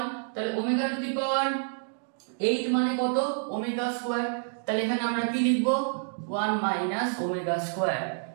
তাহলে ওমেগা টু দি পাওয়ার 8 মানে কত, ওমেগা স্কয়ার। তাহলে এখানে আমরা কি লিখবো 1 মাইনাস ওমেগা স্কয়ার।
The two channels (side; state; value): left; silent; digital silence